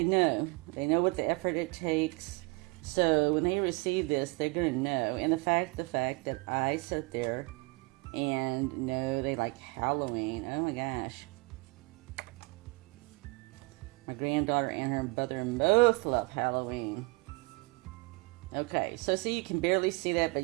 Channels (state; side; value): quieter; left; 27.4 dB